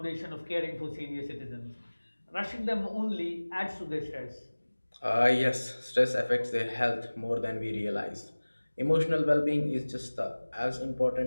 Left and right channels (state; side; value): inverted; both; correlation -1.00